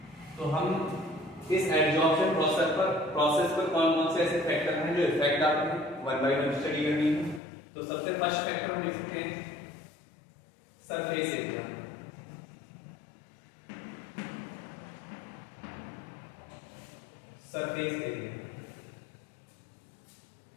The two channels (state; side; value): drops out; right; at 7.4 s